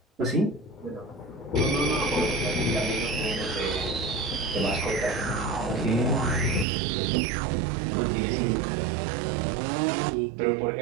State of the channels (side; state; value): left; drops out; at 6.7 s